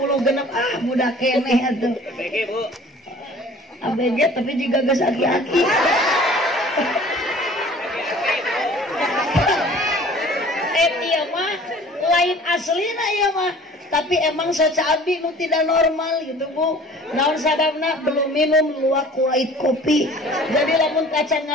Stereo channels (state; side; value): normal; both; correlation 0.48